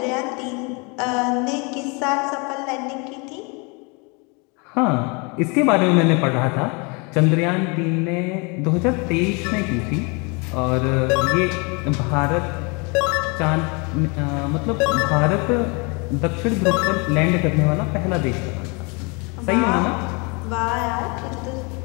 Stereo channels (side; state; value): right; quieter; 30.9 dB